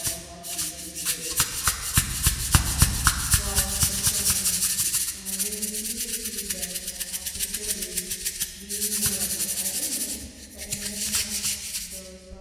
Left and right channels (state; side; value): identical; both; correlation 1.00